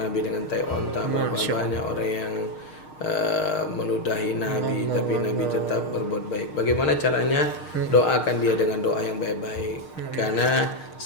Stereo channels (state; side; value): late; right; 6.5 ms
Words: dengan tai onta, berapa banyak orang yang meludahi Nabi, tapi Nabi tetap berbuat baik. Bagaimana caranya? Doakan dia dengan doa yang baik-baik. Karena